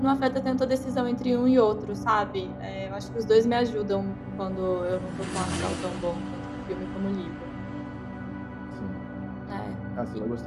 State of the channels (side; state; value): both; identical; correlation 1.00